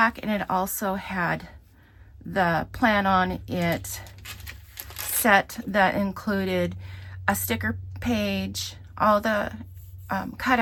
and it also had the Plan On It set that included a sticker page, all the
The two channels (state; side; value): identical; both; correlation 1.00